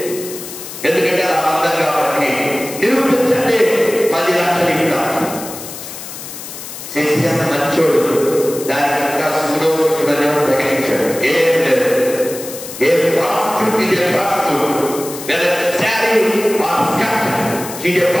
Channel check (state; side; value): noise; left; hiss, 11 dB below the sound